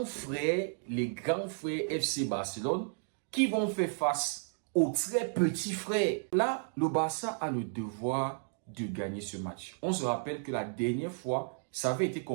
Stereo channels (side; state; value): left; silent; digital silence